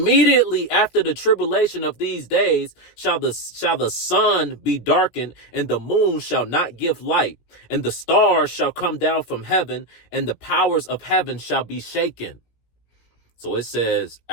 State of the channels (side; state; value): right; late; 17 ms